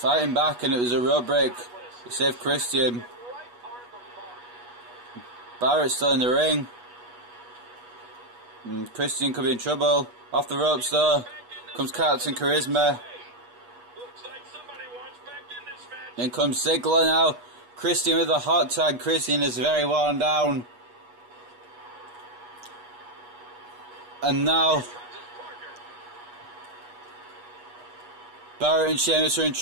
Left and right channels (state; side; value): late; left; 8.3 ms